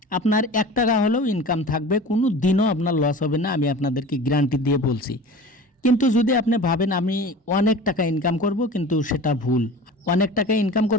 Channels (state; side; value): normal; both; correlation 0.37